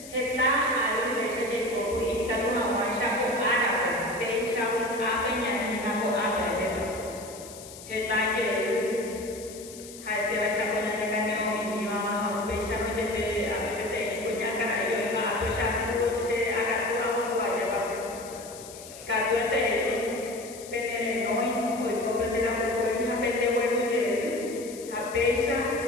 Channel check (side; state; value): left; noise; hiss, 16 dB below the sound